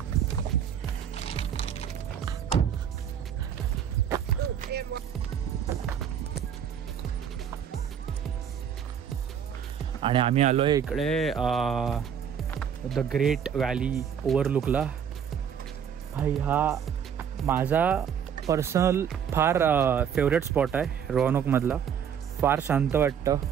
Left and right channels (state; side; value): quieter; left; 8.3 dB